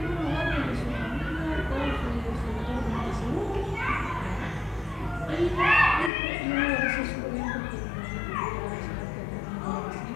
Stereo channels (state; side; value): drops out; right; at 6.1 s